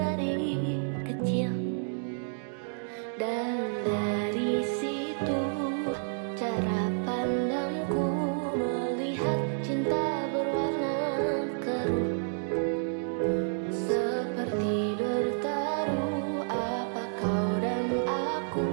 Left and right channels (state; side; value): silent; left; digital silence